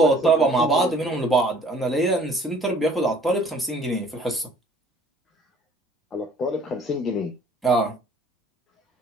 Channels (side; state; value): both; normal; correlation 0.55